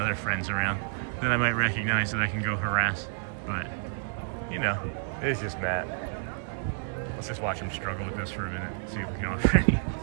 friends around that I might recognize that I can go harass. But, you know, it is just Matt. Let's just watch him struggle with this for a minute, see if we can offer any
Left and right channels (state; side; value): silent; left; digital silence